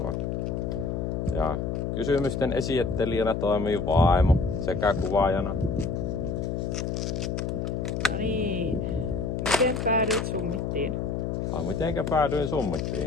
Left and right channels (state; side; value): noise; left; hum, 1 dB below the sound